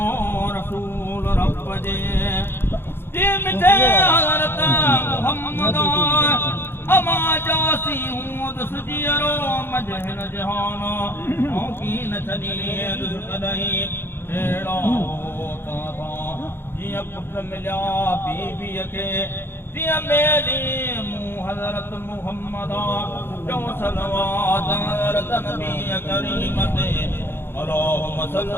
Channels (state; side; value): late; right; 0.11 ms